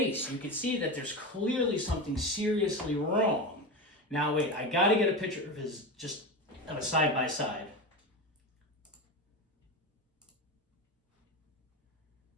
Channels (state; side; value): normal; both; correlation 0.22